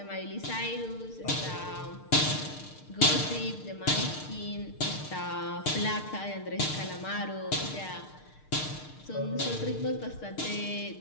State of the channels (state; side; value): late; right; 6.6 ms